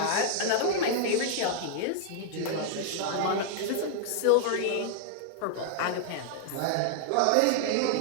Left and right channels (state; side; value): different; both; correlation 0.00